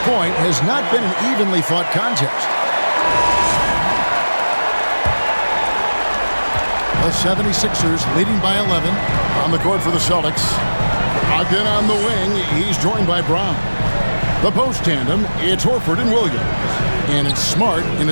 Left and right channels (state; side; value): inverted; both; correlation -1.00